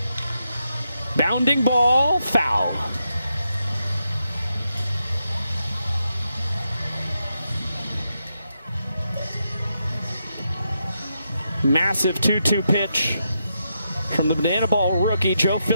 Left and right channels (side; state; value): both; inverted; correlation -0.83